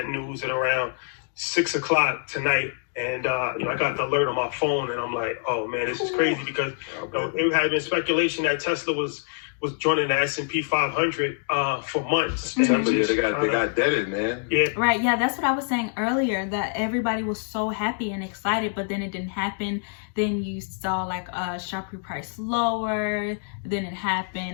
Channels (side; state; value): right; silent; 61 dB below the other